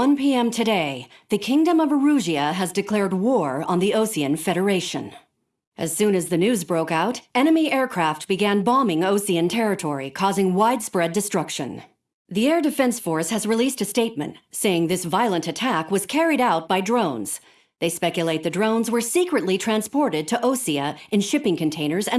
p.m. today, the Kingdom of Erusean has declared war on the Erusean Federation. As soon as the news broke out, enemy aircraft began bombing Erusean territory, causing widespread destruction. The Air Defense Force has released a statement saying this violent attack was carried out by drones. They speculate the drones were secretly transported to Erusean in shipping containers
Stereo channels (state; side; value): identical; both; correlation 1.00